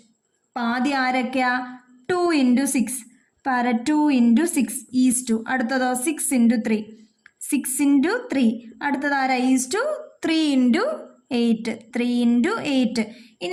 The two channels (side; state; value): both; identical; correlation 1.00